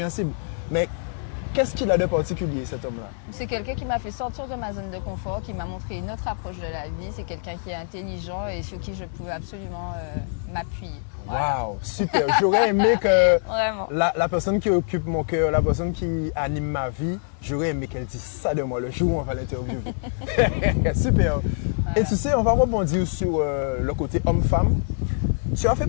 Mais qu'est-ce qu'il a de particulier, cet homme-là? C'est quelqu'un qui m'a fait sortir de ma zone de confort, qui m'a montré une autre approche de la vie. C'est quelqu'un qui est intelligent et sur qui je pouvais absolument m'appuyer. Waouh, super. J'aurais aimé que Vraiment. La personne qui occupe mon cœur, la personne qui anime ma vie, j'aurais aimé qu'elle dise ça de moi le jour où on va l'interviewer. Super. Voilà. Et tu sais, on va rebondir sur le côté homme-femme. Tu as fait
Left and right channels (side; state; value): right; silent; 55 dB below the other